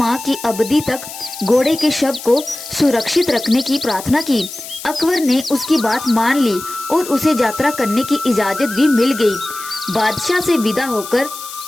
की अवधि तक घोड़े के शव को सुरक्षित रखने की प्रार्थना की। अकबर ने उसकी बात मान ली और उसे यात्रा करने की इजाजत भी मिल गई। बादशाह से विदा होकर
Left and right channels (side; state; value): left; noise; hiss, 12 dB below the sound